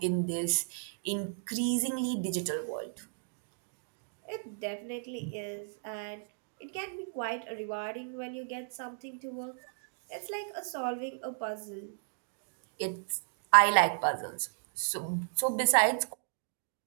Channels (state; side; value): silent; left; digital silence